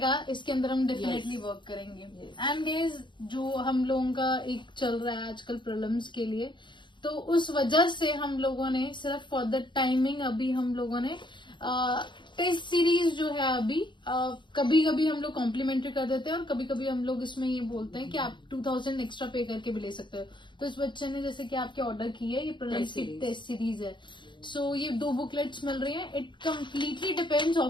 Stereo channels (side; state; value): right; late; 0.23 ms